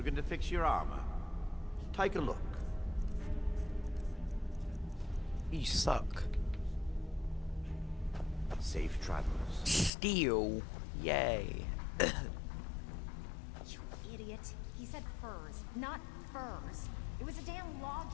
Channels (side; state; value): right; drops out; at 9.9 s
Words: Looking to fix your armor? Take a look. You suck. Safe travels. Steel. Yay. You idiot. He said furs, not furs. It was a damn